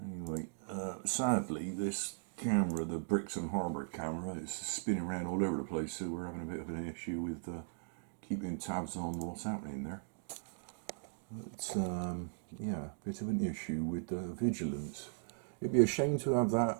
sadly this camera, the Brixton Harbour camera, is spinning around all over the place, so we're having a bit of an issue with keeping tabs on what's happening there. But yeah, a bit of an issue with Vigilance. It'd be a shame to have that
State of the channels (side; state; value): left; silent; digital silence